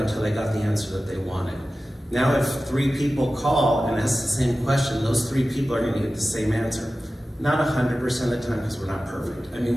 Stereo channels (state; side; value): normal; both; correlation 0.95